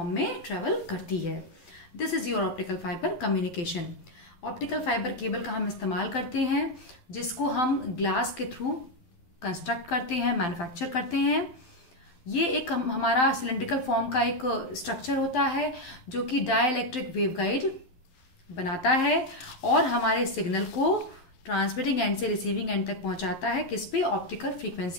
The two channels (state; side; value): late; right; 12 ms